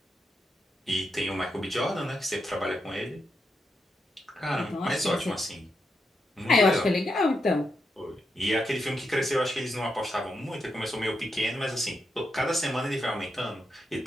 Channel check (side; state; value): both; normal; correlation 0.84